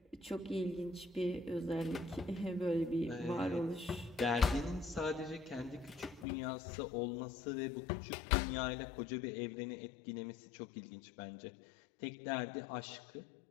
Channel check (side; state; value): right; drops out; at 6.2 s